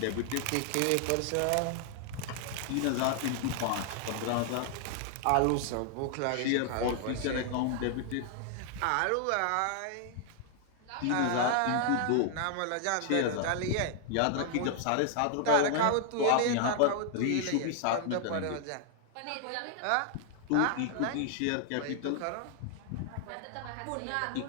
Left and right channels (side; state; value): both; different; correlation 0.00